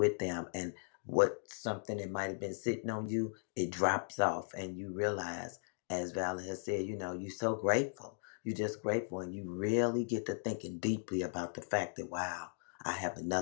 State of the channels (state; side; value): silent; right; digital silence